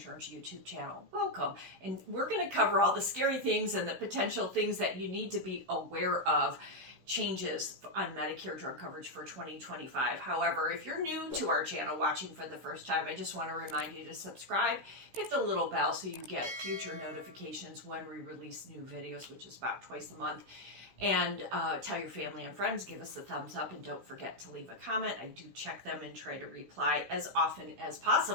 YouTube channel. Welcome. And we're going to cover all the scary things and the potential things that you need to be aware of. Changes on Medicare drug coverage for 2025. However, if you're new to our channel watching for the first time, I just want to remind you to subscribe, hit the little bell so you get future notifications when we release new videos, which is about twice a month. And tell your family and friends, give us a thumbs up, and don't forget to leave a comment. I do check them and try to reply as often as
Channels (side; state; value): left; late; 16 ms